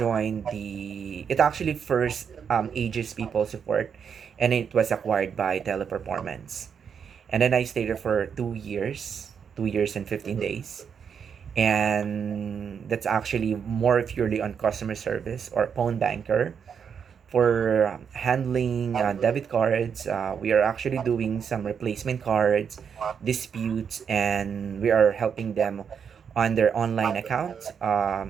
the it actually first Aegis People Support, and it was acquired by Teleperformance. And then I stayed there for 2 years, 2 years and 15 days. And that's actually more purely on customer service or phone banker Uh-huh. for handling debit cards. We are actually doing some replacement cards, disputes, and we are helping them on their online account.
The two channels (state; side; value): quieter; left; 7.1 dB